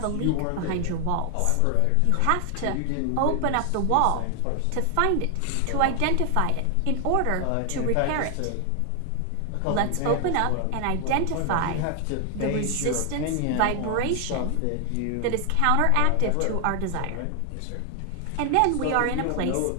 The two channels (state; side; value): different; both; correlation 0.00